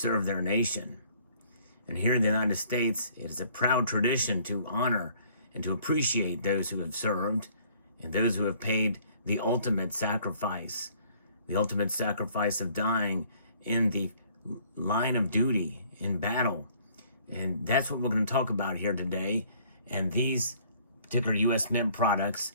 their nation. And here in the United States, it is a proud tradition to honor and to appreciate those who have served and those who have paid the ultimate sacrifice of dying in the line of duty in battle. And that's what we're going to talk about here today. And these particular U.S. Mint products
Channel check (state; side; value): inverted; both; correlation -0.59